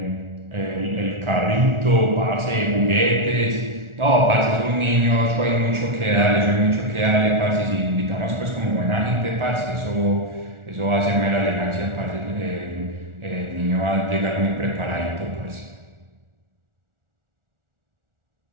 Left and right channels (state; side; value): late; left; 1.4 ms